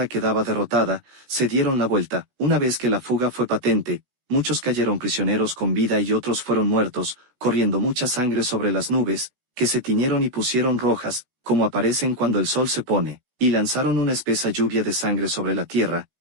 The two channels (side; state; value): left; late; 17 ms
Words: quedaba derrotada, se dieron la vuelta. Una vez que la fuga fue patente, muchos cayeron prisioneros con vida y otros fueron muertos, corriendo mucha sangre sobre las nubes, que se tiñeron y pusieron rojas, como aparecen cuando el sol se pone, y lanzaron una espesa lluvia de sangre sobre la tierra,